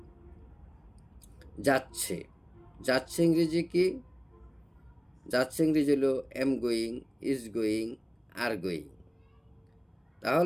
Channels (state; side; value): identical; both; correlation 1.00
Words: যাচ্ছে। যাচ্ছে ইংরেজি কি? যাচ্ছে ইংরেজি হলো am going, is going, are going.